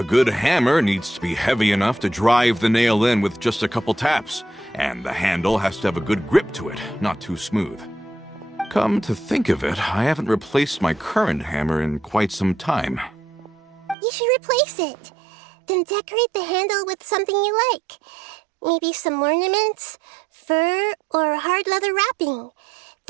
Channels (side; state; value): left; drops out; at 14.0 s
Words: good hammer needs to be heavy enough to drive the nail in with just a couple taps, and the handle has to have a good grip to it, not too smooth. Come to think of it, I haven't replaced my current hammer in quite some time. You should replace it. Then decorate the handle with something you like. Maybe some ornaments, fur, or hard leather wrapping.